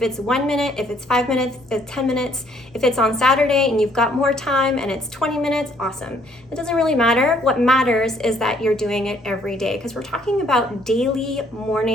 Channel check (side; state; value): both; normal; correlation 0.65